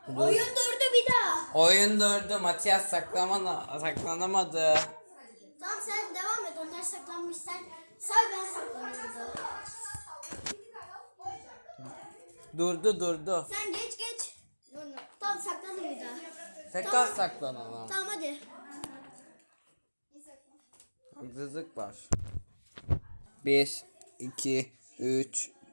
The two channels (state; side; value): inverted; both; correlation -1.00